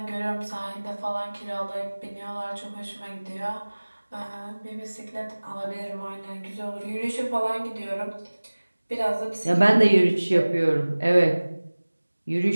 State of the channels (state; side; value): inverted; both; correlation -1.00